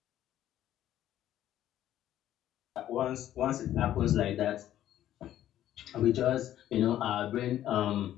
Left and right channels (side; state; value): right; quieter; 12.2 dB